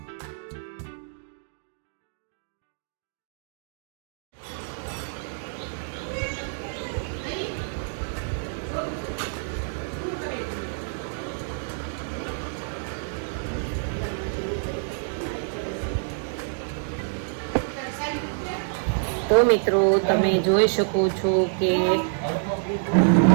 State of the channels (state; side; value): silent; left; digital silence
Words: તો મિત્રો તમે જોઈ શકો છો કે